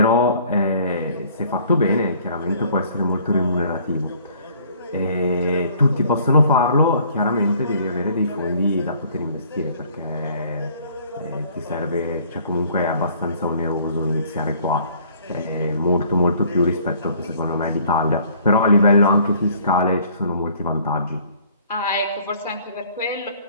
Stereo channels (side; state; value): both; inverted; correlation -0.57